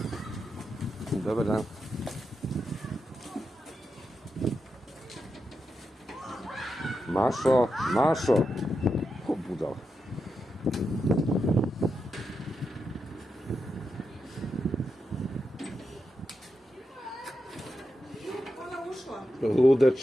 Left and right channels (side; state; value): both; normal; correlation 0.87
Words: Dobar dan. Mašo, Mašo. O, budal.